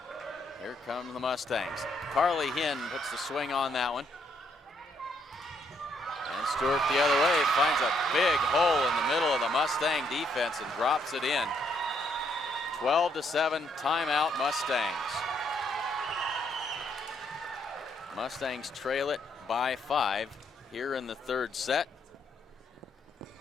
Here come the Mustangs. Carly Hinn puts the swing on that one. And Stewart the other way finds a big hole in the middle of the Mustang defense and drops it in. 12-7, timeout Mustangs. Mustangs trail it by 5 here in the third set.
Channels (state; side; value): normal; both; correlation 0.73